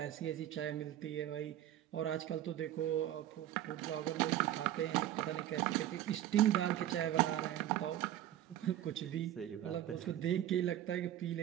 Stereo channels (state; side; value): quieter; left; 12.4 dB